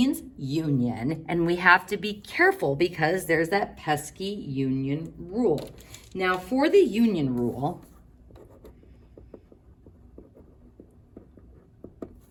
union, and we have to be careful because there's that pesky union rule. Now, for the union rule,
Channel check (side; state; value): both; identical; correlation 1.00